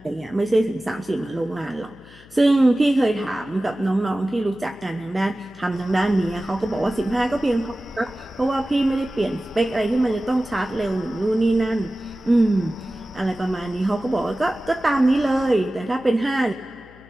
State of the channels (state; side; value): noise; left; hum, 24 dB below the sound